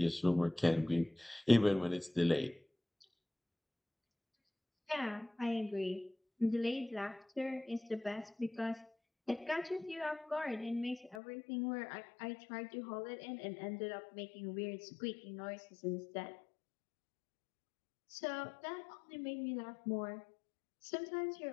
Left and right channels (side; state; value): right; drops out; at 11.2 s